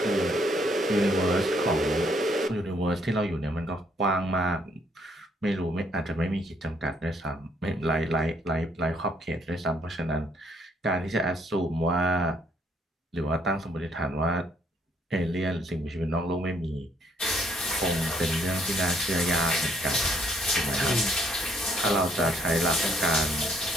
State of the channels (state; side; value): normal; both; correlation 0.68